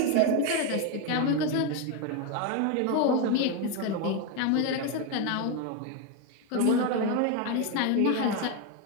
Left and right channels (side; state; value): both; different; correlation 0.02